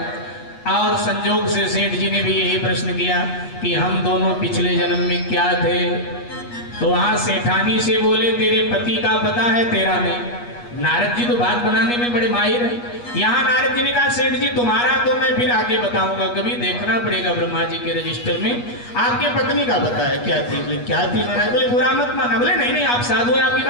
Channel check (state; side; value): late; right; 8.3 ms